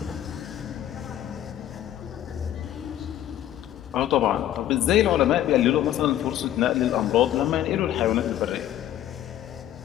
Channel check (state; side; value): quieter; right; 12.0 dB